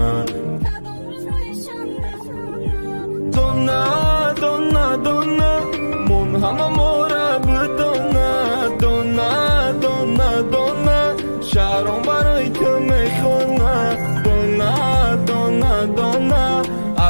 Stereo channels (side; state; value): both; inverted; correlation -1.00